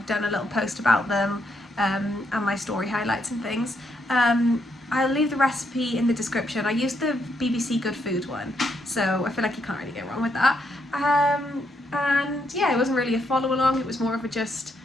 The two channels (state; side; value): normal; both; correlation 0.77